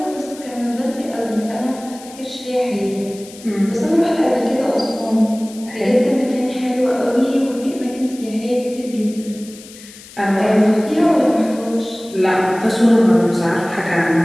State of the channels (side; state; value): left; noise; hiss, 19 dB below the sound